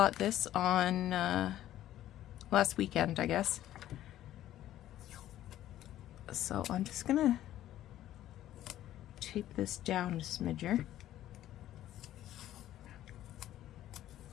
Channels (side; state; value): right; quieter; 13.0 dB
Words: this on last weekend, I guess. So I'm just gonna tape this down a smidger.